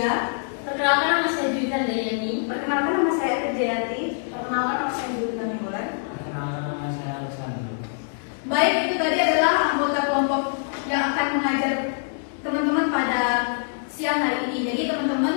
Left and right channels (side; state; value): right; silent; digital silence